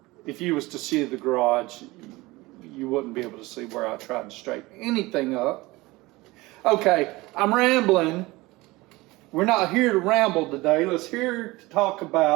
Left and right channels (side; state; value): left; quieter; 21.1 dB